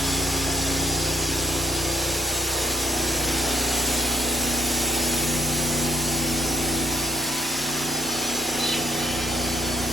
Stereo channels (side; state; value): left; noise; rumble, 23 dB below the sound